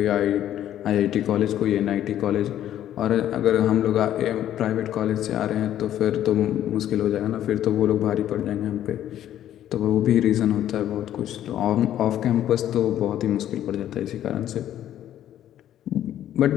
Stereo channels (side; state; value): right; quieter; 11.6 dB